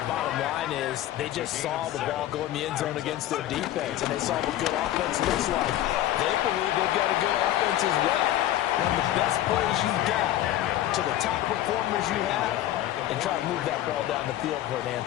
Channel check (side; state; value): right; quieter; 13.5 dB